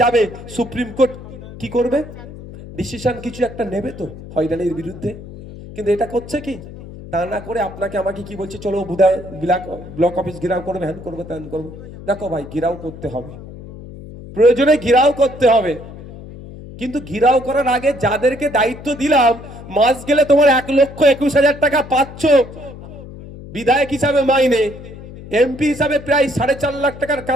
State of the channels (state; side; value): noise; left; hum, 15 dB below the sound